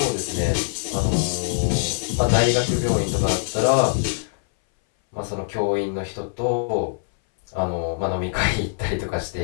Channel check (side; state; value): right; silent; 60 dB below the other